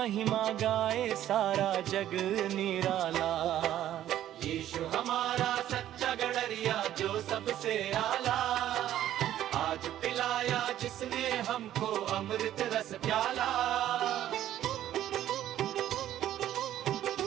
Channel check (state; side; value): quieter; left; 12.2 dB